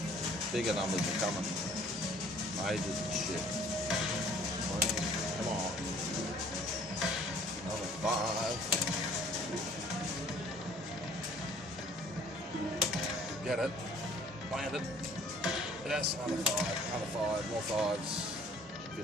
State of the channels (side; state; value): both; normal; correlation 0.55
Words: Bigger numbers are coming. Majors and shit. Come on. Another 5. Get it. Land it. Yes, another 5. Another 5. More 5s. If you're